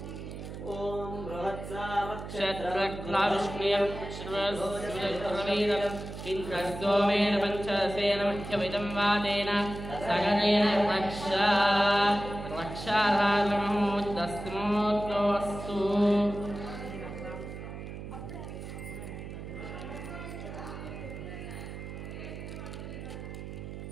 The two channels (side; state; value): right; noise; hum, 9 dB below the sound